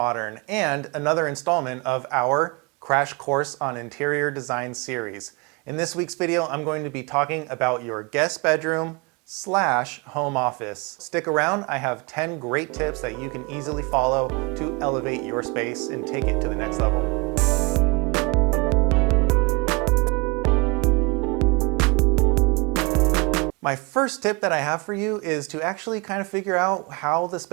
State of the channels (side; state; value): left; quieter; 28.4 dB